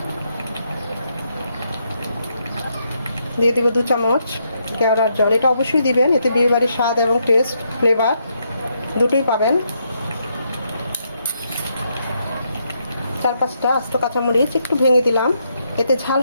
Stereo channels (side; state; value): both; inverted; correlation -0.77